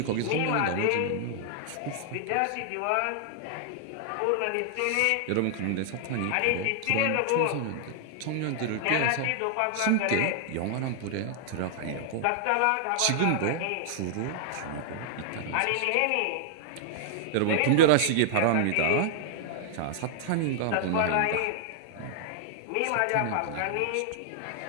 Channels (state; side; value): different; both; correlation 0.00